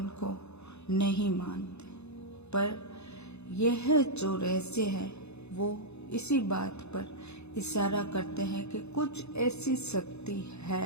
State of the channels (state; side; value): late; right; 0.80 ms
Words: को नहीं मानते, पर यह जो रहस्य है वो इसी बात पर इशारा करते हैं कि कुछ ऐसी शक्ति है